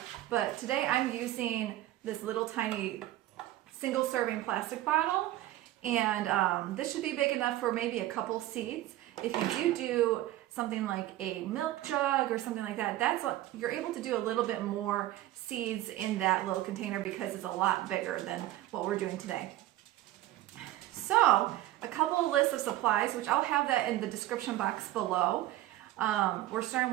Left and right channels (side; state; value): left; quieter; 15.2 dB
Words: but today I'm using this little tiny single serving plastic bottle, and this should be big enough for maybe a couple seeds. If you do something like a milk jug or something like that, you're able to do a little bit more seeds in that little container because it's a lot bigger than what we're doing today. So a couple of lists of supplies, which I'll have that in the description box below. We're